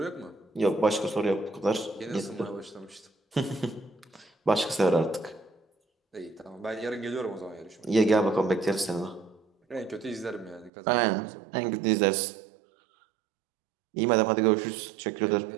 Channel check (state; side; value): drops out; left; at 10.7 s